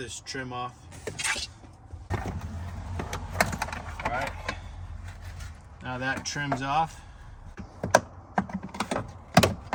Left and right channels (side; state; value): both; identical; correlation 1.00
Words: trim off. All right, now that trim's off.